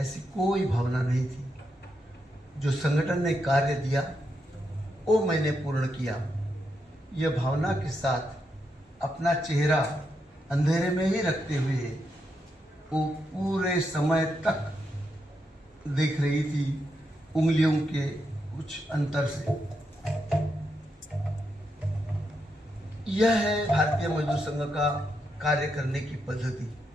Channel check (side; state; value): both; normal; correlation 0.82